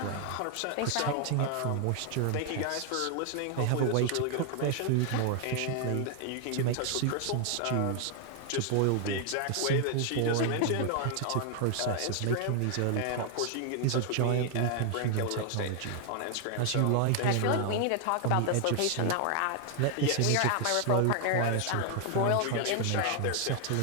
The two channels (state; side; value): different; both; correlation 0.00